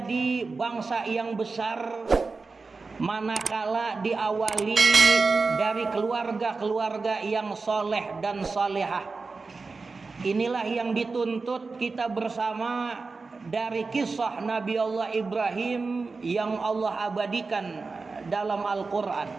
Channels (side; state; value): left; quieter; 4.1 dB